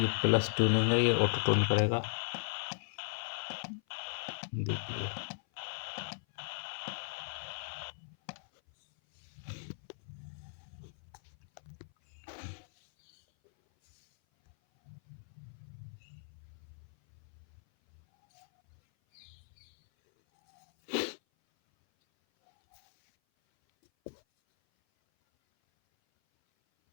प्लस ट्यूनिंग है, ये ऑटो ट्यून करेगा। देखिए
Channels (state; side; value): silent; right; 53 dB below the other